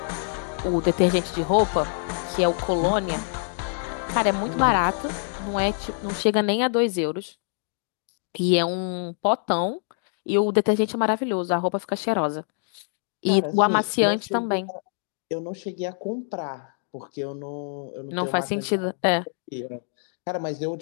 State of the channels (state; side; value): silent; right; digital silence